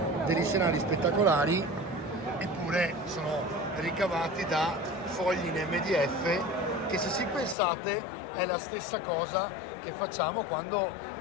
degli scenari spettacolari eppure sono ricavati da fogli in MDF che, se ci pensate, è la stessa cosa che facciamo quando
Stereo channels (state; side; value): drops out; right; at 7.6 s